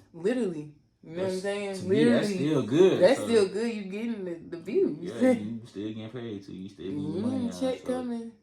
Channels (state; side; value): identical; both; correlation 1.00